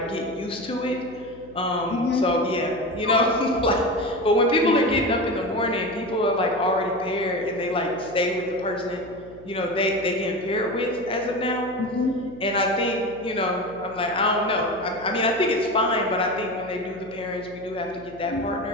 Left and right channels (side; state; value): left; noise; hum, 21 dB below the sound